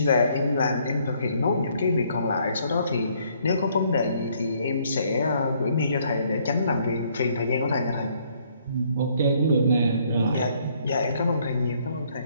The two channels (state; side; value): inverted; both; correlation -0.66